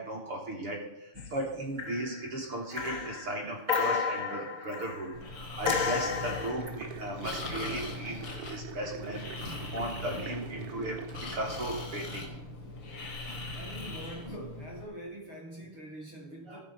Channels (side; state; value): left; late; 6.8 ms